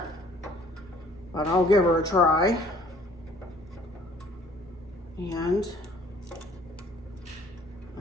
but I'll give her a try. And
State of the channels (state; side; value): normal; both; correlation 0.56